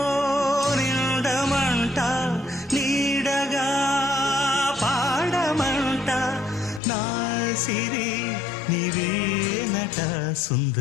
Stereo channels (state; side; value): drops out; right; at 6.8 s